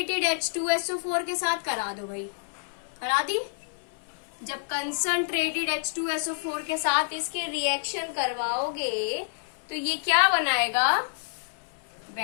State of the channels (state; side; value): silent; right; 59 dB below the other